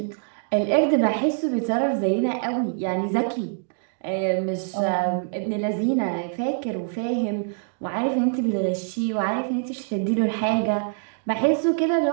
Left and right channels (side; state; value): left; silent; digital silence